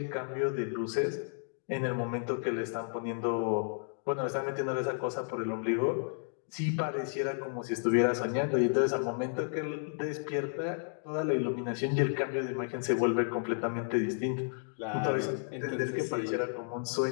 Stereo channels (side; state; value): right; silent; digital silence